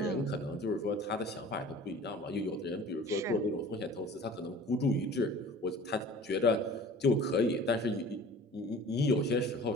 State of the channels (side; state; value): both; normal; correlation 0.44